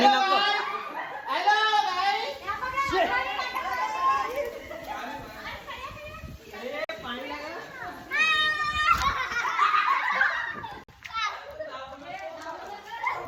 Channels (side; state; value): both; identical; correlation 1.00